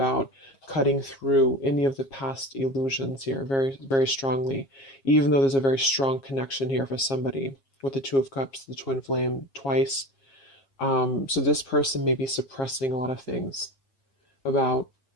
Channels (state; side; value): late; right; 7.4 ms